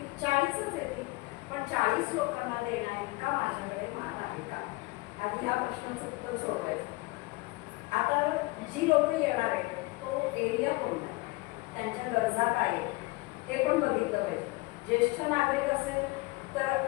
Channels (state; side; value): quieter; right; 23.3 dB